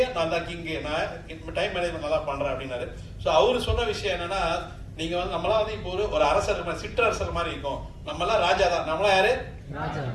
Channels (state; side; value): identical; both; correlation 1.00